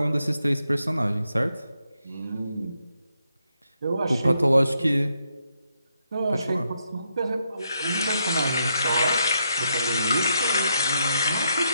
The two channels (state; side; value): inverted; both; correlation -0.79